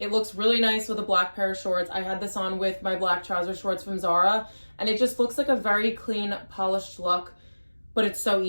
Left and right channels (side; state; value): both; inverted; correlation -1.00